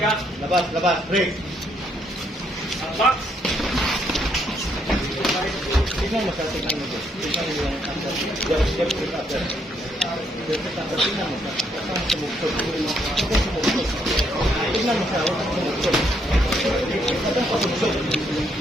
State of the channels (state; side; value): normal; both; correlation 0.72